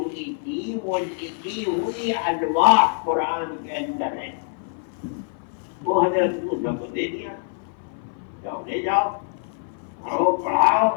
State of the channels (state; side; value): silent; right; 57 dB below the other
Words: تھی وہ لکھی ہوئی الواح قرآن کے اندر ہے. وہ حضرت موسیٰ کو دے دیا، جاؤ لے جاؤ، پڑھو پڑھاؤ.